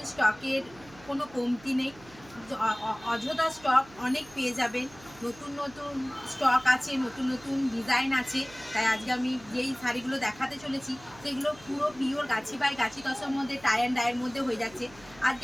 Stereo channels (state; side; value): noise; right; hum, 22 dB below the sound